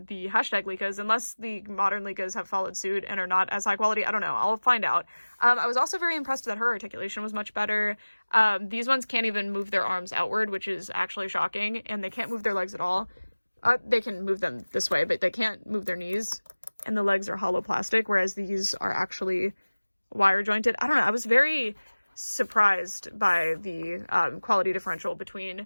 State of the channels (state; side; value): inverted; both; correlation -1.00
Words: the hashtag Liccas, unless the modern Liccas have followed suit and are not as high quality. I don't know. I'll find out. I was also very impressed that her articulation was much better. These ones can't even move their arms outward, which is actually shocking, and they can't move their legs at all. They can move them this way, but they can't move their knees, and the legs are hollow plastic, whereas these are actually wire jointed. I don't know. I was very surprised by the quality differential